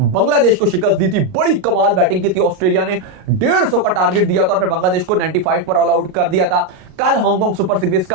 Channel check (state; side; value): late; left; 38 ms